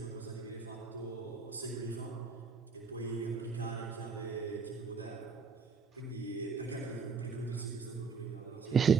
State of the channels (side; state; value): left; quieter; 5.2 dB